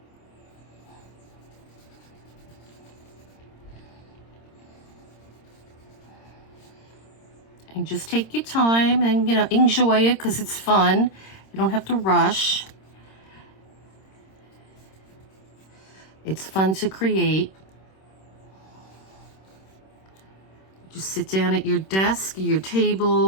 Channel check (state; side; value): late; right; 26 ms